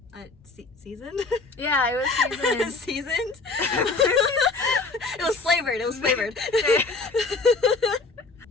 seasoned. Yeah, it was seasoned. Seasoned. It was flavored.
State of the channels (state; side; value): quieter; right; 3.8 dB